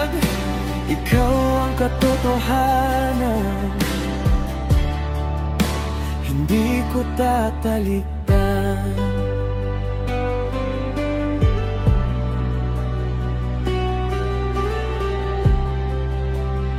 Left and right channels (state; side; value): identical; both; correlation 1.00